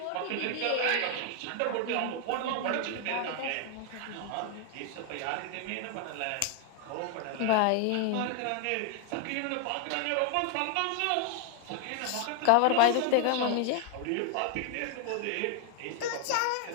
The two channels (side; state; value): both; different; correlation 0.00